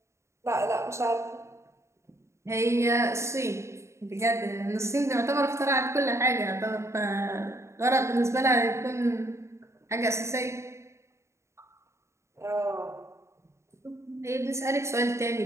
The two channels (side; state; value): left; late; 0.14 ms